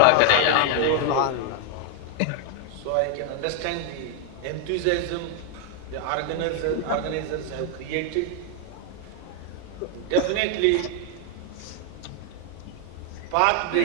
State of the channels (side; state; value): both; different; correlation 0.00